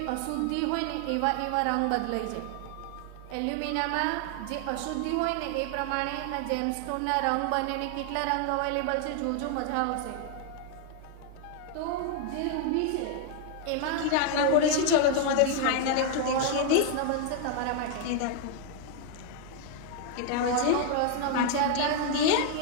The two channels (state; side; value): different; both; correlation 0.00